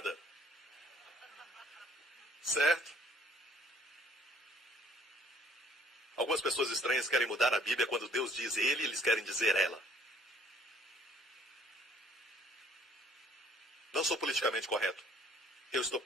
Certo? Algumas pessoas estranhas querem mudar a Bíblia quando Deus diz ele, eles querem dizer ela. Não sou politicamente correto. Eu estou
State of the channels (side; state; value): both; normal; correlation 0.59